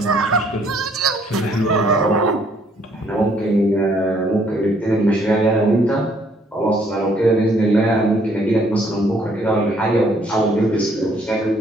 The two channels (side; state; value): both; normal; correlation 0.65